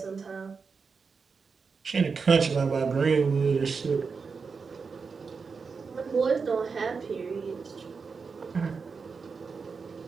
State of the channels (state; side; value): quieter; left; 5.1 dB